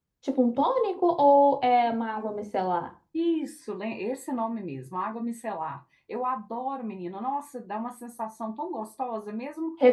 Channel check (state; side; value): identical; both; correlation 1.00